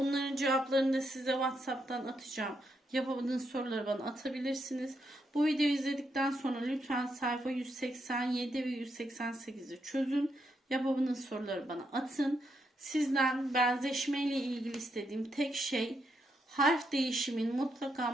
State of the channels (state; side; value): normal; both; correlation 0.80